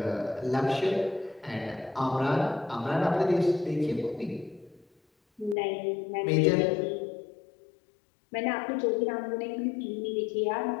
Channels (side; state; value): right; drops out; at 5.6 s